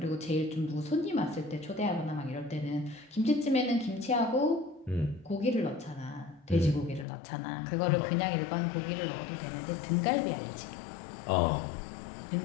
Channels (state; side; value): drops out; right; at 7.1 s